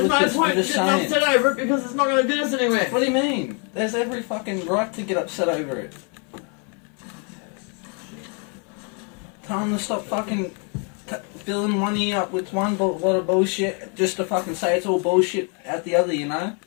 no point getting upset over it because it's not going to get us anywhere. What do you mean? There's every fucking right to get upset over it. Tell them to stop fucking filling one ear up with one lot of bullshit just to fucking say it's all bullshit at the other, you know?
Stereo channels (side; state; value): right; quieter; 37.1 dB